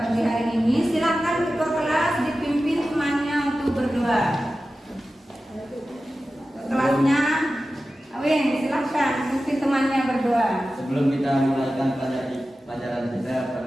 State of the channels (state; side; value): normal; both; correlation 0.94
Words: hari ini. Silakan ketua kelas dipimpin temannya untuk berdoa. Kelasnya, Awin, silakan pimpin temannya berdoa. Sebelum kita mulaikan pelajaran kita